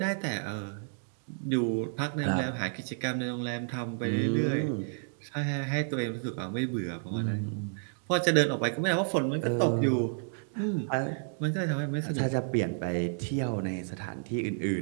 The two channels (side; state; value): left; silent; digital silence